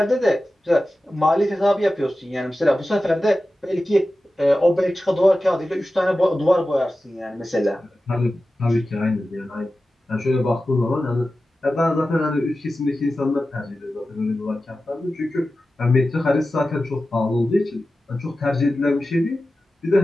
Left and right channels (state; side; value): normal; both; correlation 0.94